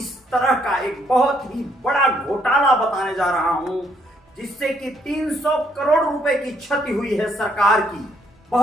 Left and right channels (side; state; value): both; normal; correlation 0.70